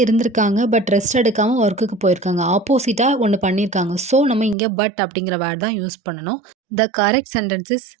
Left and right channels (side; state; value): left; drops out; at 4.5 s